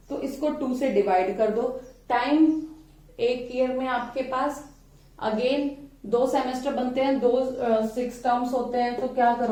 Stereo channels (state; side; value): identical; both; correlation 1.00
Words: तो इसको 2 से डिवाइड कर दो. टाइम एक ईयर में आपके पास अगेन 2 सेमेस्टर बनते हैं, 6 टर्म्स होते हैं. तो क्या